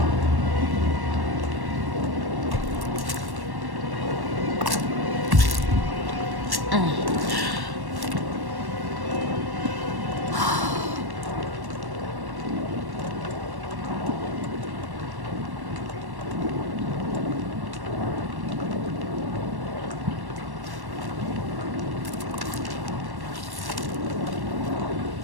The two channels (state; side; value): late; left; 1.1 ms